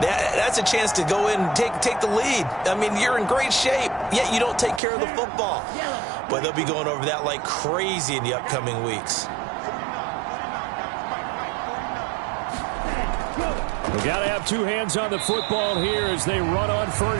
a chance to go in and take the lead. I mean, you're in great shape, yet you don't take care of the football. But they'll be going over that like crazy in the upcoming weeks. We got to have two hands on the football here as they run on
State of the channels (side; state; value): left; drops out; at 4.8 s